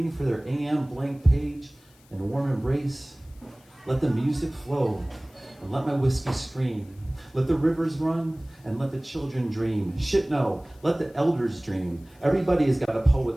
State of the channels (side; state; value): left; noise; hiss, 30 dB below the sound